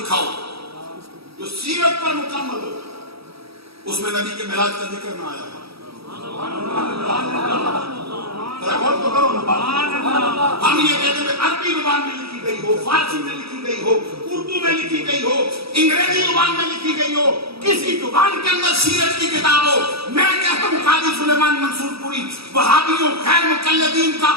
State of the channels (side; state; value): left; late; 0.77 ms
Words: دکھاؤ جو سیرت پر مکمل ہو, اس میں نبی کے میلاد کا ذکر نہ آیا. غور تو کرو نا بات. ہم یہ کہتے ہیں عربی زبان میں لکھی گئی ہو, فارسی میں لکھی گئی ہو, اردو میں لکھی گئی ہو, انگریزی زبان میں لکھی گئی ہو, کسی زبان کے اندر سیرت کی کتاب ہو. میں کہتا ہوں قاضی سلیمان منصور پوری وہابیوں غیر مقلدین کا